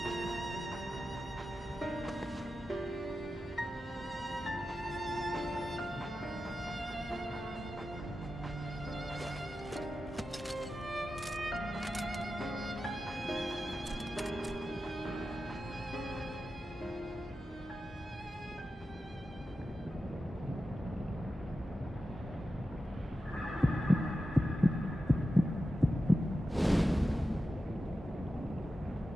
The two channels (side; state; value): both; normal; correlation 0.92